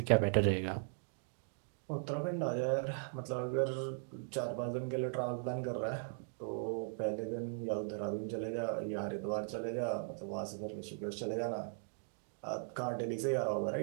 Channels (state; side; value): silent; left; digital silence